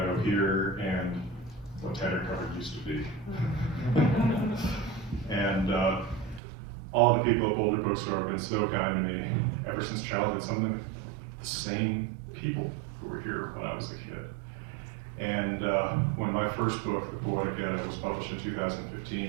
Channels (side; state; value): left; drops out; at 6.4 s